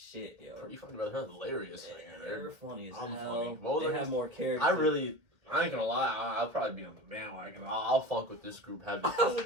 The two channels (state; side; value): late; left; 2.0 ms